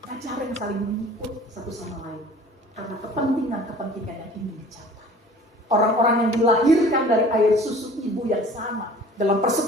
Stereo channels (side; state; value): both; normal; correlation 0.47